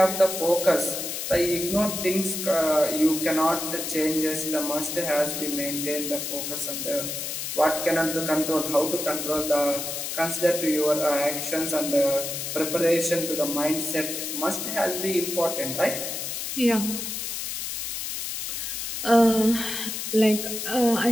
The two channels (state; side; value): noise; left; hiss, 4 dB below the sound